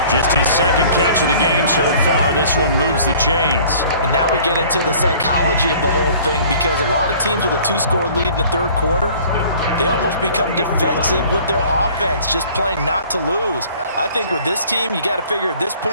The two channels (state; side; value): inverted; both; correlation -0.51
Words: Just his 2nd catch of the game so far. This one moves the chains. And now we get into the psychology of the whole thing because a lot of teams with a 2-score lead in the 3rd quarter, they almost become defensive with their offense, just playing not to lose. I think with this team, you got to figure at this